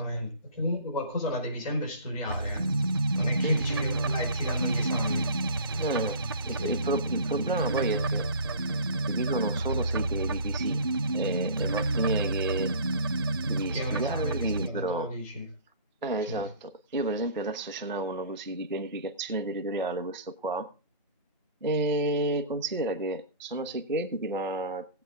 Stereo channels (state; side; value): inverted; both; correlation -0.43